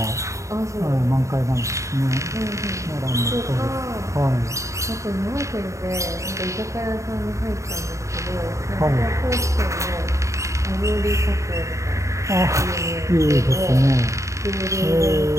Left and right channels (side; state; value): left; late; 0.15 ms